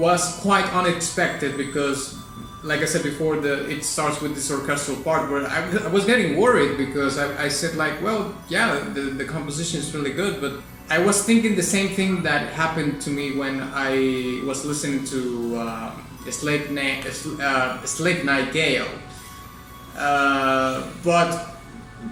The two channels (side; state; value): both; identical; correlation 1.00